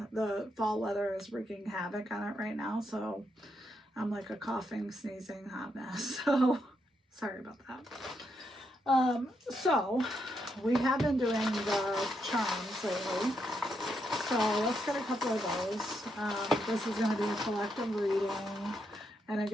The fall weather is wreaking havoc on it right now. So I'm like a coughing, sneezing hot mess. So sorry about that. So we have been doing the charms lately. So let's get a couple of those. This is going to be a collective reading. And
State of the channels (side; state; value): both; normal; correlation 0.80